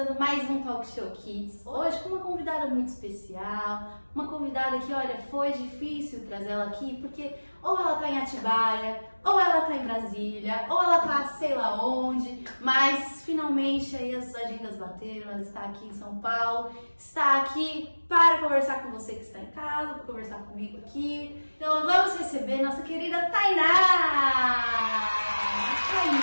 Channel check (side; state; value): both; inverted; correlation -1.00